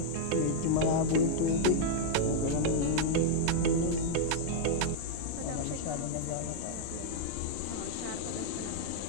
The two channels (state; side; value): different; both; correlation -0.01